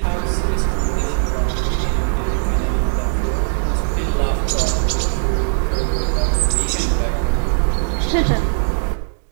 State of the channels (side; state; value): left; silent; digital silence